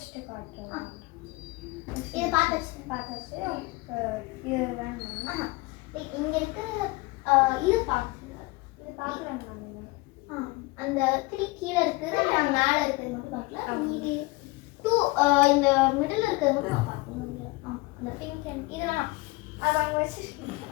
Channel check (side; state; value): right; quieter; 23.2 dB